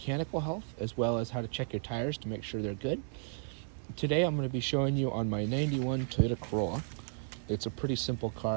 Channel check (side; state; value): left; silent; 55 dB below the other